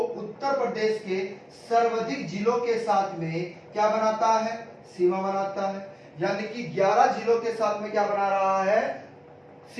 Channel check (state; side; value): identical; both; correlation 1.00